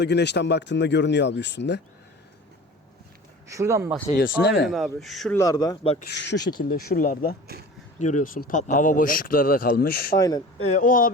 güneşten baktığında görünüyor abi üstünde. Şuradan bahsediyorsun değil Aynen mi? abi. Şuralarda bak, şu şekilde şuralarda görüyorsun patlaklar. Hava boşlukları da kalmış. Aynen. O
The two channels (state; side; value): normal; both; correlation 0.39